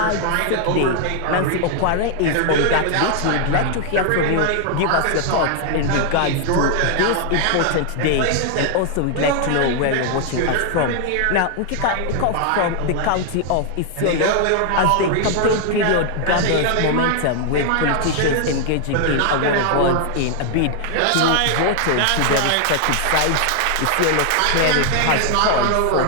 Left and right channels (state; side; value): different; both; correlation 0.00